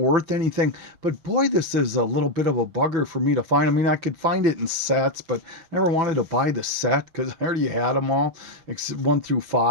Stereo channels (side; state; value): left; late; 6.0 ms